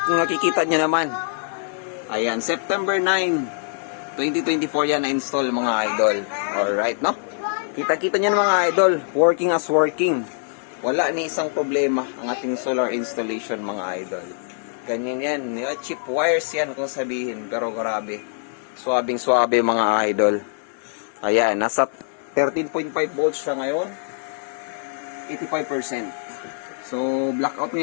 kung nakikita nyo naman. Ayan, September 9, 2024 yan na-install mga idol. Alright, no? Kita-kita nyo mga idol, working as working. Wala ni isang problema ang ating solar installation mga idol. Ganyan yan. Cheap wires yan kung sabihin. Pero grabe. Suwabing-suwabe mga idol. Ayan. Nasa 13.5 volts siya ngayon. 85%. So, blackout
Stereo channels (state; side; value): silent; right; 63 dB below the other